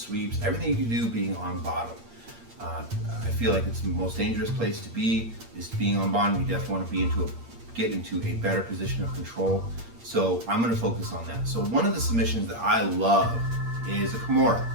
everything you can do being on bottom. I feel like it's the most dangerous place to be, is being on bottom. You definitely want to get into a better position of control. So I'm going to focus on that. So one of the submissions that I love is a Kimura.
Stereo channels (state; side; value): late; left; 8.6 ms